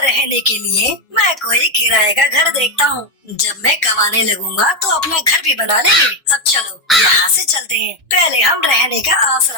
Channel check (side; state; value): both; normal; correlation 0.06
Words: रहने के लिए मैं कोई किराए का घर देखता हूँ। जब मैं कमाने लगूंगा तो अपना घर भी बना लेंगे। अब चलो यहाँ से चलते हैं, पहले हम रहने का